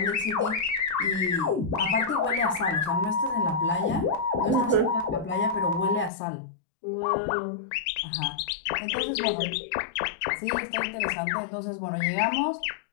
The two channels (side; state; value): right; drops out; at 6.1 s